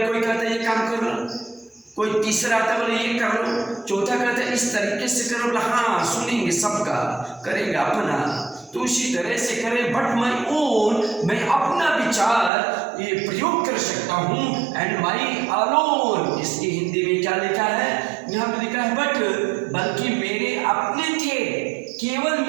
कोई कहता है ये काम कर लो, कोई तीसरा आता बोले ये कर लो, चौथा कहता है इस तरीके से करो, बोला हाँ सुनेंगे, सबका करेंगे अपना, तो उसी तरह से करें। बट माई ओन, मैं अपना विचार ये प्रयोग कर सकता हूँ। एंड माई अलोन, इसकी हिंदी में क्या लिखा है? यहाँ पे लिखा है बट, बल्कि मेरे अपने थे, केवल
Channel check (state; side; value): drops out; left; at 12.5 s